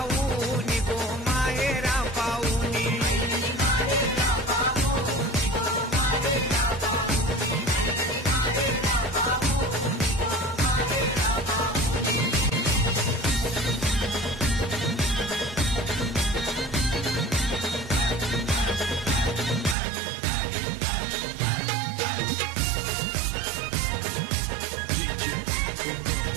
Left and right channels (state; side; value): drops out; left; at 19.8 s